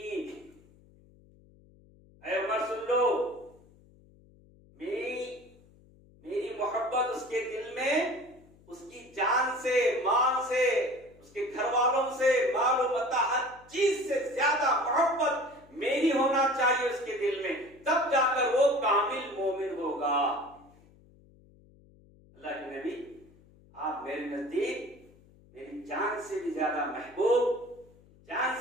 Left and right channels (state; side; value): noise; left; hum, 27 dB below the sound